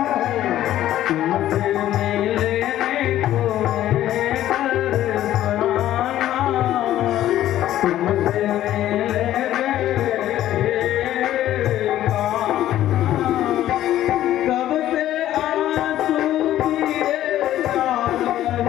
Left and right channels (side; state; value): right; quieter; 13.0 dB